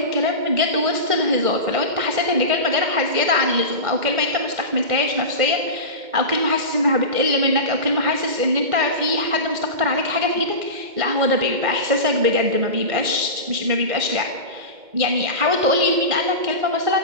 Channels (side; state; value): left; late; 2.1 ms